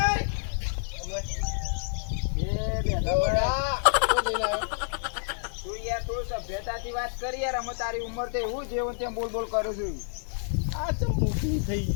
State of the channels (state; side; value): silent; right; digital silence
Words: છે તું સભ્યતાથી વાત કરી યાર. અમે તારી ઉંમર તો એવું જેવું તેમ બોલ બોલ કરું છું. આ ચમ મોકલી થઈ